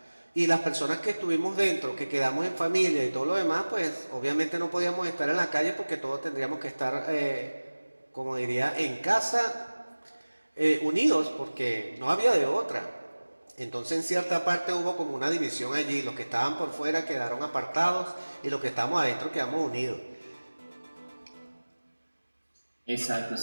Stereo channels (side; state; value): both; inverted; correlation -1.00